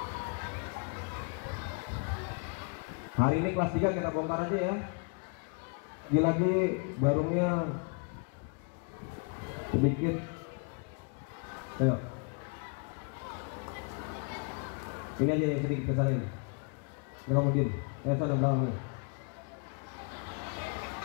Hari ini kelas 3 kita bongkar aja ya. Lagi barunya sedikit. Ayo. Ini aja yang sedikit kesana ini. Jangan mungkin. Sana belakang.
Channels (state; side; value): quieter; right; 36.8 dB